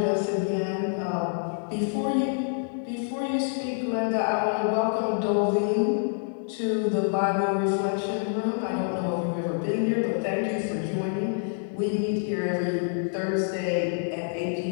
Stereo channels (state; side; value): silent; right; digital silence